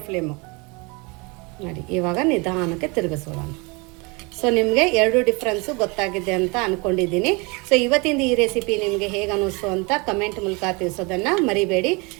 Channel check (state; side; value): quieter; left; 28.6 dB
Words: ಫ್ಲೇಮು. ನೋಡಿ, ಇವಾಗ ನಿಧಾನಕ್ಕೆ ತಿರುಗಿಸೋಣ. ಸೊ ನಿಮಗೆ ಎರಡು ಡಿಫ್ರೆನ್ಸು ಗೊತ್ತಾಗಿದೆ ಅಂತ ಅಂದ್ಕೊಂಡಿದ್ದೀನಿ. ಸೊ ಇವತ್ತಿಂದ ಈ ರೆಸಿಪಿ ನಿಮಗೆ ಹೇಗೆ ಅನ್ನಿಸ್ತು ಅಂತ ಕಮೆಂಟ್ ಮೂಲಕ ತಿಳಿಸೋದನ್ನು ಮರಿಬೇಡಿ.